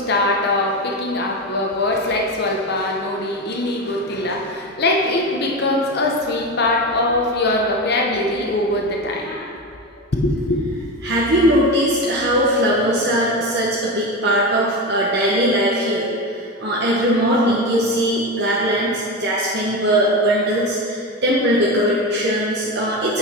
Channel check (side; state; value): both; normal; correlation 0.20